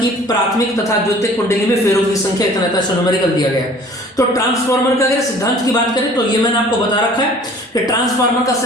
प्राथमिक तथा द्वितीयक कुंडली में फेरों की संख्या इतना न्यूमेरिकल दिया गया है। तो ट्रांसफॉर्मर का अगर सिद्धांत की बात करें तो ये मैंने आपको बता रखा है कि ट्रांसफॉर्मर का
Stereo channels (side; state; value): both; normal; correlation 0.50